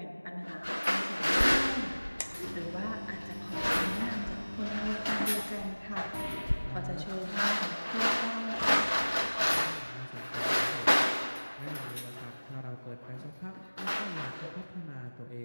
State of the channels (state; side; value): inverted; both; correlation -1.00